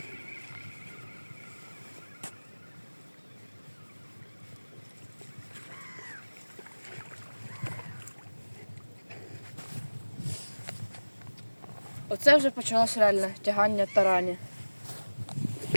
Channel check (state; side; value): inverted; both; correlation -1.00